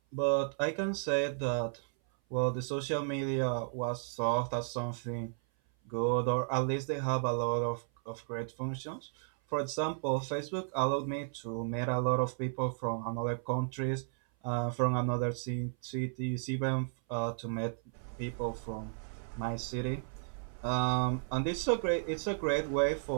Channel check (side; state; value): left; silent; 55 dB below the other